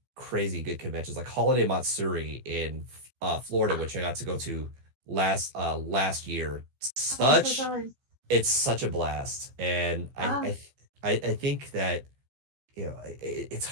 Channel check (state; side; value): late; left; 15 ms